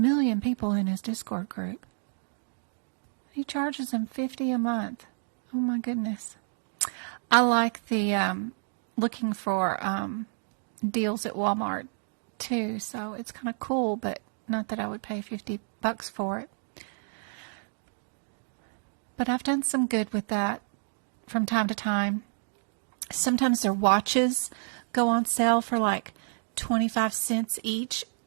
people in his Discord group. He charges them $50 a month. Oh my goodness. I like the looking for deals at Walmart too, so it's kind of cool, but not that I would pay $50 for it. But I've done some good with that from time to time. Sometimes their watches go on sale for like 25 cents each,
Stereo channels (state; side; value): silent; left; digital silence